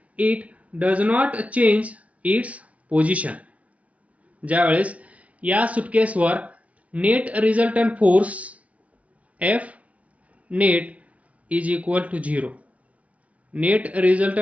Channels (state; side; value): late; left; 0.066 ms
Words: It does not change its position. ज्यावेळेस या सुटकेसवर net resultant force F net is equal to 0. Net